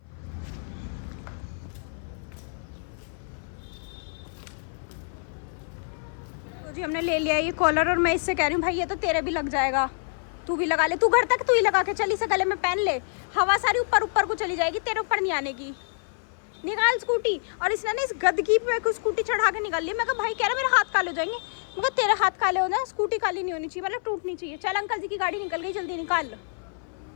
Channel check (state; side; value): silent; right; 57 dB below the other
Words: तो जी हमने ले लिया ये कॉलर, और मैं इससे कह रही हूँ भाई ये तो तेरे भी लग जाएगा, तू भी लगा ले। तू घर तक तू ही लगा के चल, इसे गले में पहन ले, हवा सारी ऊपर ऊपर को चली जाएगी, तेरे ऊपर नहीं आने की। निकाल स्कूटी। और इसने ना इस गदगी पे स्कूटी चढ़ा के निकाल ली। मैं कहा भाई कह रहा मेरे हाथ काले हो जाएंगे। मैं कहा तेरे हाथ काले हो जाए, स्कूटी काली नहीं होनी चाहिए, मतलब टूटनी चाहिए। चल अंकल जी की गाड़ी निकल गई, जल्दी निकाल।